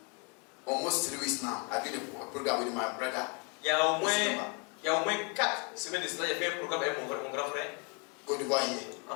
almost 3 weeks now, I do the program with my brother. il y a au moins 4 semaines de cela, j'ai fait un programme avec mon grand frère Côte d'Ivoire here.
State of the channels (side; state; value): right; quieter; 32.8 dB